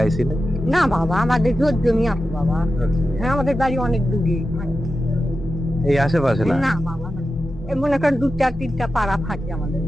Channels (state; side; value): normal; both; correlation 0.91